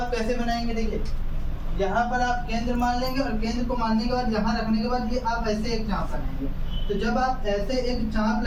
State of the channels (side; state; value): both; identical; correlation 1.00